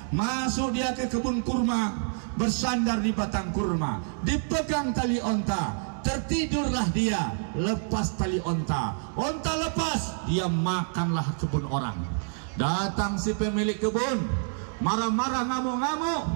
Masuk dia ke kebun kurma, bersandar di batang kurma, dipegang tali onta, tertidurlah dia, lepas tali onta, onta lepas, dia makanlah kebun orang. Datang si pemilik kebun, marah-marah, ngamuk-ngamuk,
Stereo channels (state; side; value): silent; left; digital silence